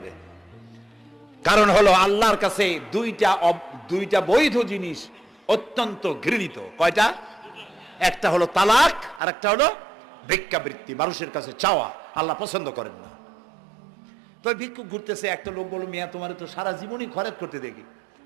কারণ হলো আল্লাহর কাছে দুইটা বৈধ জিনিস অত্যন্ত ঘৃণিত। কয়টা? একটা হলো তালাক, আর একটা হলো ভিক্ষাবৃত্তি, মানুষের কাছে চাওয়া। আল্লাহ পছন্দ করেন না। তো ভিক্ষুক ঘুরতেছে, একটা লোক বলল, মিয়া তোমার তো সারা জীবনই খয়রাত করতে দেখি।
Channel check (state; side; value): drops out; left; at 9.2 s